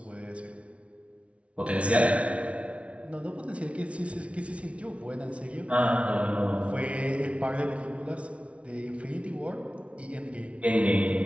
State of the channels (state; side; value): late; left; 0.062 ms